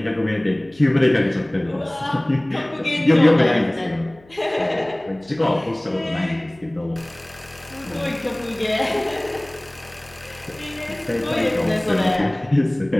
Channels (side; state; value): left; noise; hum, 27 dB below the sound